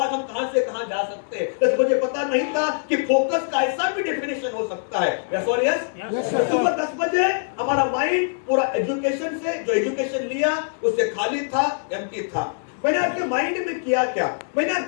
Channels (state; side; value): silent; right; digital silence